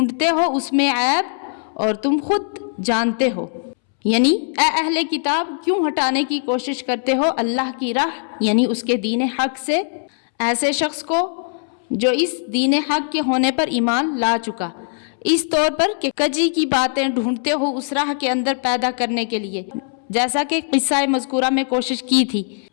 ہو اس میں عیب اور تم خود جانتے ہو، یعنی اے اہل کتاب کیوں ہٹانے کی کوشش کرتے ہو اللہ کی راہ یعنی اس کے دین حق سے ایسے شخص کو جو اس دین حق کے ہونے پر ایمان لا چکا، اس طور پر کہ کجی کی باتیں ڈھونڈتے ہو اس راہ کے اندر پیدا کرنے کے لیے، جیسا کہ قصہ مذکورہ میں کوشش کی تھی،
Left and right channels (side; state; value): right; silent; 66 dB below the other